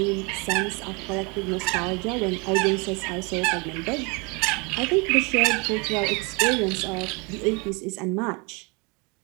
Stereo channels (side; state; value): left; quieter; 30.3 dB